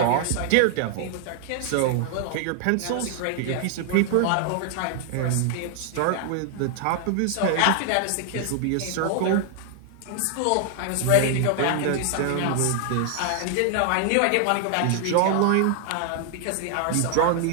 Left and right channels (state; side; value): different; both; correlation 0.00